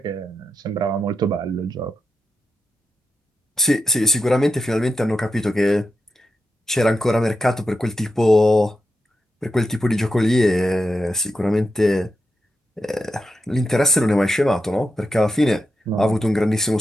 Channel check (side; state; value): both; normal; correlation 0.87